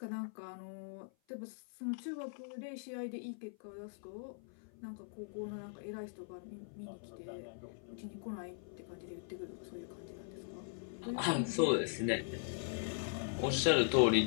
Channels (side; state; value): right; silent; 51 dB below the other